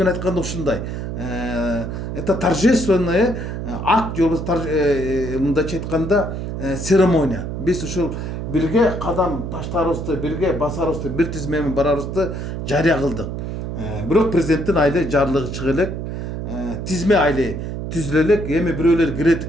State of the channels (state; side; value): noise; right; hum, 5 dB below the sound